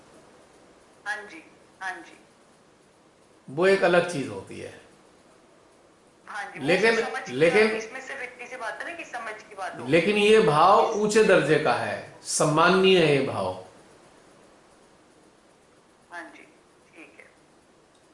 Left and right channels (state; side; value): identical; both; correlation 1.00